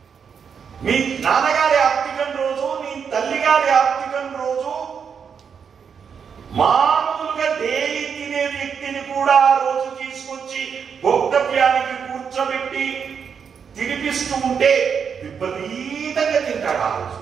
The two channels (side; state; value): left; quieter; 6.8 dB